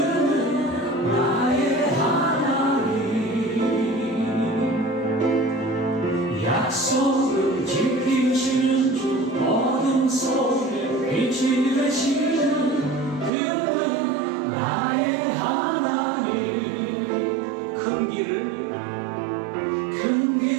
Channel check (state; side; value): drops out; left; at 13.3 s